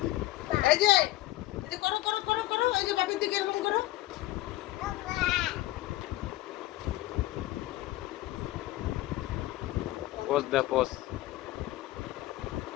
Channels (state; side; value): quieter; right; 16.8 dB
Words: এই যে করো করো করো করো, এই যে বাপের দিকে এরকম করো। পোজ দে পোজ